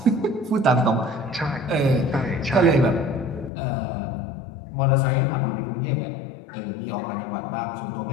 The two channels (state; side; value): drops out; right; at 3.5 s